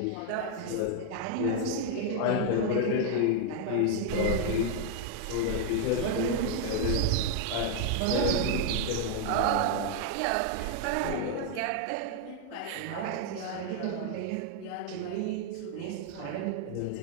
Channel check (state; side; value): different; both; correlation 0.00